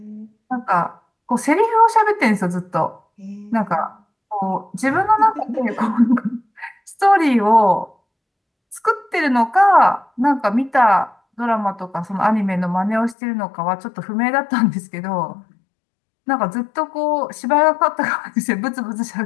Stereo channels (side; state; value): right; drops out; at 13.2 s